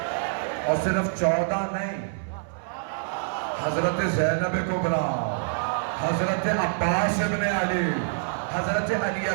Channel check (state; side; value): silent; left; 61 dB below the other